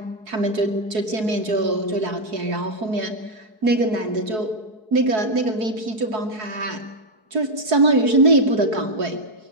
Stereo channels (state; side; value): late; left; 4.7 ms